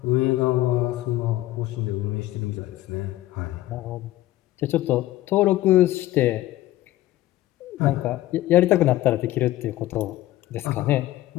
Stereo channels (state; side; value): quieter; right; 15.8 dB